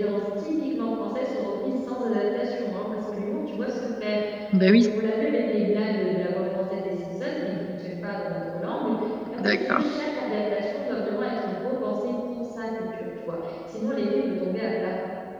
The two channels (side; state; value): both; identical; correlation 1.00